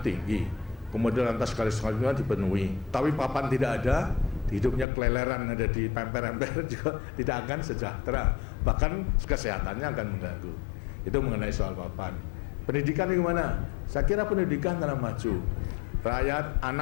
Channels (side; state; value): right; drops out; at 4.9 s